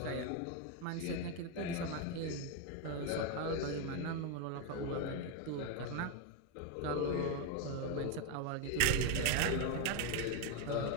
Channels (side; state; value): both; different; correlation 0.02